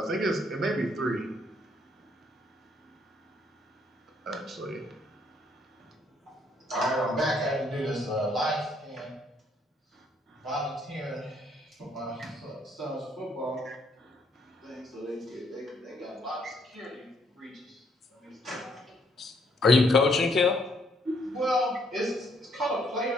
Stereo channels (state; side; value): normal; both; correlation 0.69